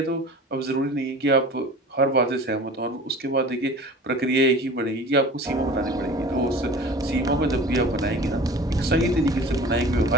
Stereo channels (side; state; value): both; normal; correlation 0.40